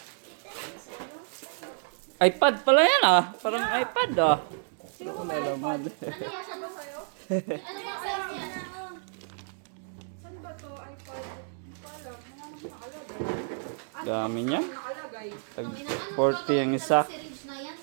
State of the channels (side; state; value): left; silent; digital silence